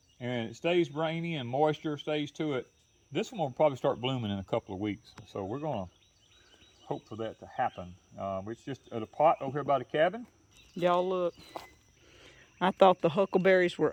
and it stays rainy and moisture stays to it, this one will probably start blooming in a couple of weeks. So we're going to hope for that to happen. It's just at a pot over here by the cabin. Y'all look. I thought the huckleberries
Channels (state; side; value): identical; both; correlation 1.00